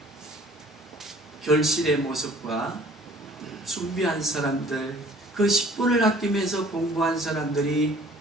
결실의 모습과 준비한 사람들, 그 10분을 아끼면서 공부한 사람들이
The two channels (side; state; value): both; normal; correlation 0.53